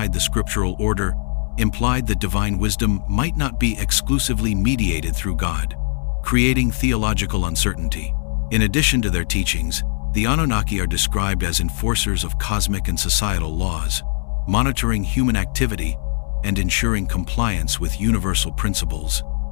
the scriptural order implied that divine wisdom might not be exclusively mediated through God, creating theological uncertainty. In addition to their teachings, the Anunnaki are described as enforcers of cosmic and societal laws, monitoring human activity and ensuring compliance with universal principles.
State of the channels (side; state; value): right; silent; 62 dB below the other